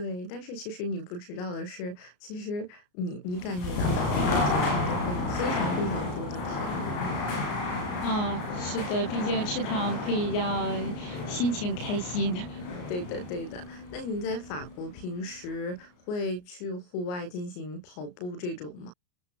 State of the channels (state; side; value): late; right; 33 ms